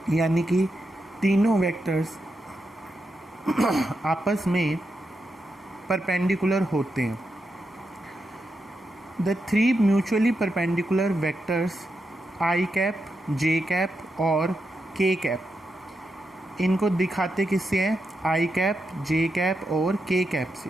यानी कि तीनों वेक्टर्स आपस में परपेंडिकुलर होते हैं। The three mutually perpendicular vectors I cap, J cap और के कैप, इनको दिखाते किससे हैं? आई कैप, जे कैप और के कैप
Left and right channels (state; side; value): normal; both; correlation 0.86